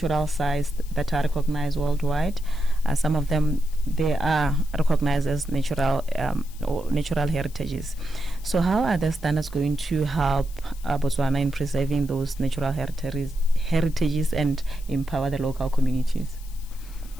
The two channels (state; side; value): noise; left; hiss, 22 dB below the sound